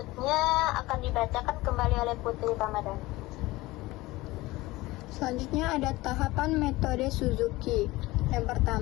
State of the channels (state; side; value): quieter; right; 19.7 dB